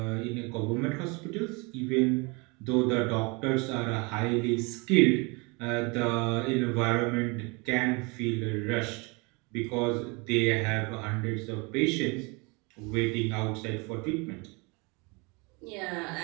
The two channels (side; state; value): left; quieter; 29.1 dB